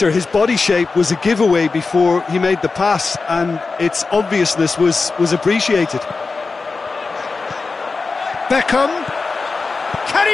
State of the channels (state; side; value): quieter; right; 4.2 dB